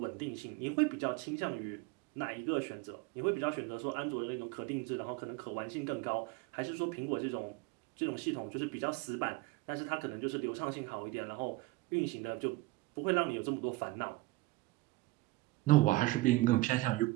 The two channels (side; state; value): left; quieter; 20.4 dB